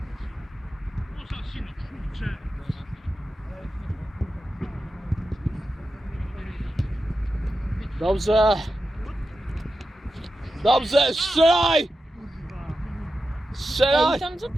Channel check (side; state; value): both; normal; correlation 0.91